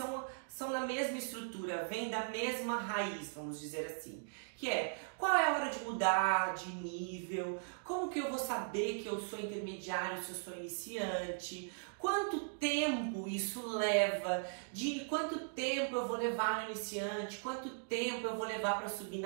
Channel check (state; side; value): silent; left; digital silence